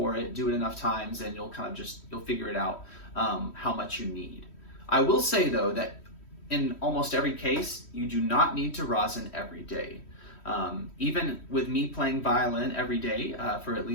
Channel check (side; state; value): right; late; 3.1 ms